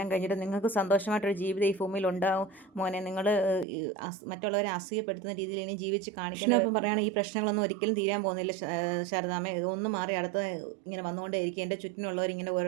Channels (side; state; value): left; drops out; at 3.7 s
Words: കഴിഞ്ഞിട്ട് നിങ്ങൾക്ക് സന്തോഷമായിട്ടൊരു ജീവിതം ഈ ഭൂമിയിൽ ഉണ്ടാവും മോനെ, നിങ്ങൾ മറ്റുള്ളവരെ അസൂയപ്പെടുത്തുന്ന രീതിയിൽ ഇനി ജീവിച്ച് കാണിക്കണം. അപ്പം പറയുകയാണ്, ഈ പ്രശ്നങ്ങളൊന്നും ഒരിക്കലും തീരാൻ പോകുന്നില്ല ശാരദാമ്മ, ഒന്ന് മാറി അടുത്ത ഇങ്ങനെ വന്നുകൊണ്ടേയിരിക്കും, എൻ്റെ ചുറ്റിനുള്ളവർ ഇങ്ങനെ